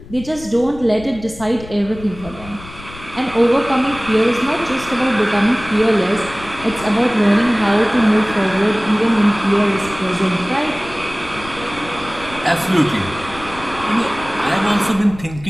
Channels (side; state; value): left; noise; rumble, 16 dB below the sound